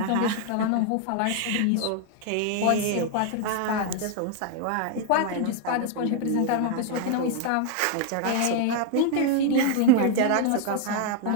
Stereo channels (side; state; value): both; different; correlation 0.00